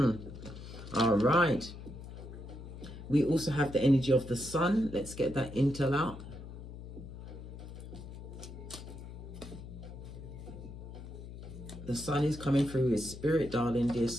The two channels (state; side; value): noise; left; hum, 12 dB below the sound